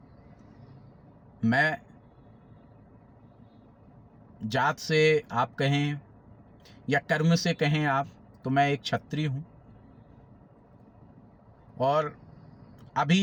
मैं जात से आप कहें या कर्म से कहें आप, तो मैं एक क्षत्रिय हूँ और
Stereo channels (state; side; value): identical; both; correlation 1.00